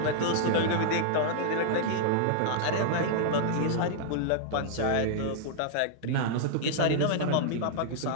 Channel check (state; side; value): different; both; correlation -0.01